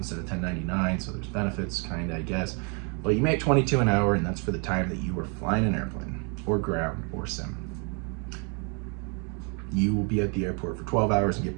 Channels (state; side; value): quieter; left; 35.9 dB